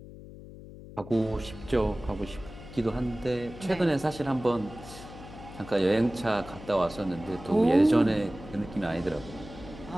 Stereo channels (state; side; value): noise; left; hum, 15 dB below the sound